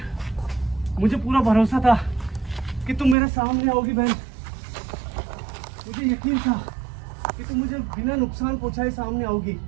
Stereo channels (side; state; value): left; drops out; at 3.2 s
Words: मुझे पूरा भरोसा था कि तुम मेरे सामने आओगी बहन, मुझे यकीन था कि तुम मुझे बिना नुकसान पहुंचाए सामने आओगी।